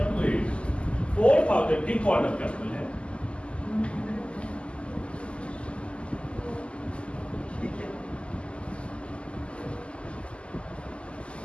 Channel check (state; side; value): late; right; 0.054 ms